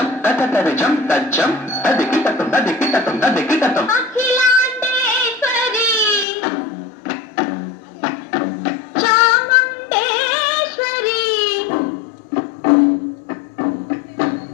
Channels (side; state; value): right; drops out; at 6.2 s